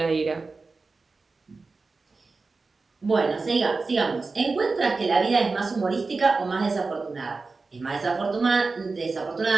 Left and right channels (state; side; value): quieter; left; 4.0 dB